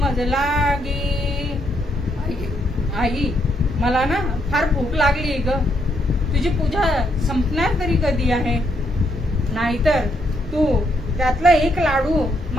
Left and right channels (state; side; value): normal; both; correlation 0.75